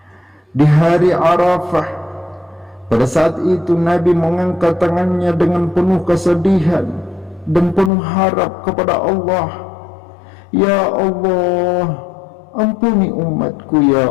Di hari Arafah, pada saat itu Nabi mengangkat tangannya dengan penuh kesedihan dan penuh harap kepada Allah. Ya Allah, ampuni umatku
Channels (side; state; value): right; drops out; at 7.9 s